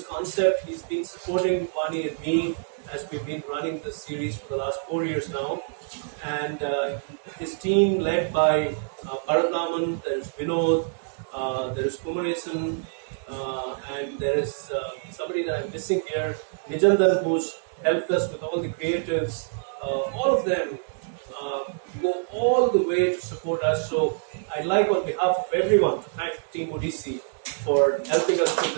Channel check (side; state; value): left; silent; digital silence